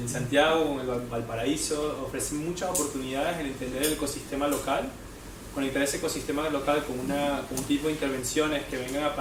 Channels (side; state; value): both; identical; correlation 1.00